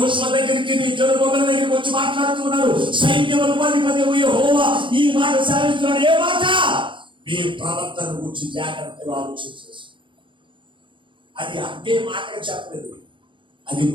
దగ్గరికి జెరుబ్బయలు దగ్గరికి వచ్చి మాట్లాడుతున్నాడు. సైన్యములకు అధిపతి యెహోవా ఈ మాట సెలవిస్తున్నాడు. ఏ మాట? మీ ప్రవర్తన గురించి జాగ్రత్తగా ఆలోచించేసి. అది అంతే మాటగా చెప్పలేదు, అది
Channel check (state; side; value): late; left; 0.24 ms